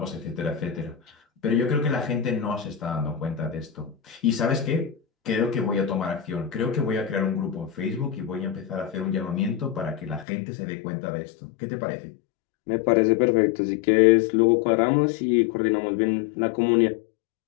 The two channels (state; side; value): drops out; right; at 10.2 s